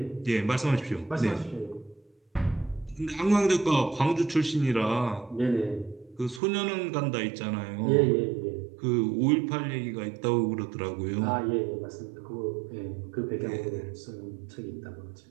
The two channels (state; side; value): drops out; left; at 6.4 s